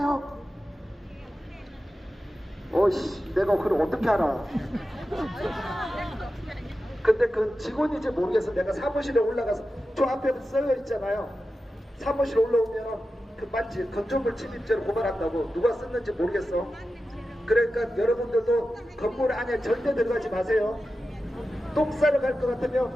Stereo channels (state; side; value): normal; both; correlation 0.92